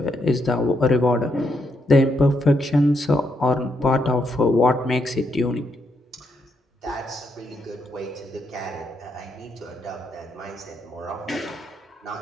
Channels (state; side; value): normal; both; correlation 0.78